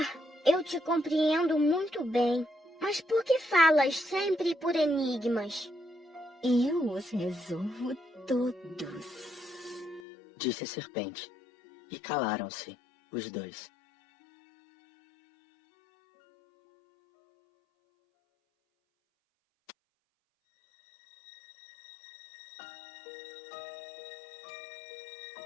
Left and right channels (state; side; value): drops out; right; at 10.0 s